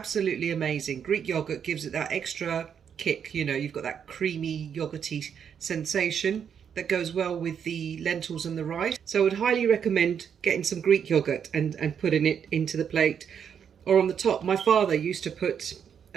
amazing. Greek yogurt gives it that extra kick. You know, you've got that creamy, yogurty sensation that goes well with the lentils and the rice. So I would highly recommend getting some Greek yogurt and putting it into the plate or on the top. My father used to put,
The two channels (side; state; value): left; quieter; 7.8 dB